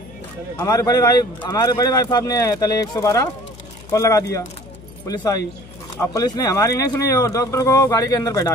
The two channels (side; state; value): left; noise; hum, 20 dB below the sound